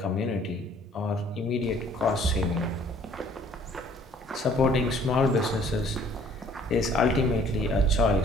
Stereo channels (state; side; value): normal; both; correlation 0.57